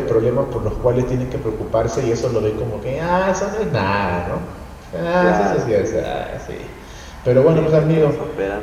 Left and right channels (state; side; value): identical; both; correlation 1.00